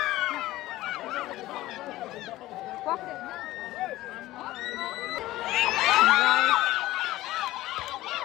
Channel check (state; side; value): quieter; right; 16.6 dB